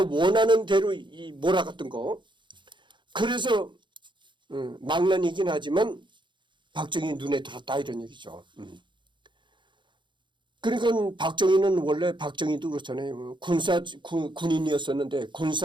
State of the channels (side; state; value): left; late; 0.23 ms